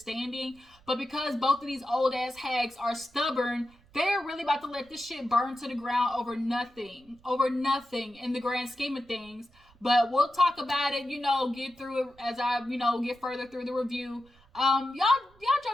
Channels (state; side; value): noise; right; rumble, 28 dB below the sound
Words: But because both of these old-ass hags are stubborn, they're really about to let this shit burn to the ground over nothing in the grand scheme of things. But we'll talk about it, get through it as I, get further through the review. Y'all